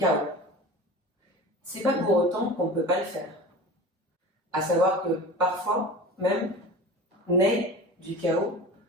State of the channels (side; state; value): both; normal; correlation 0.35